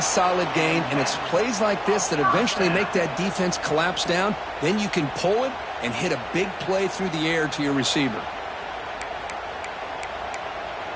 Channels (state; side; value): identical; both; correlation 1.00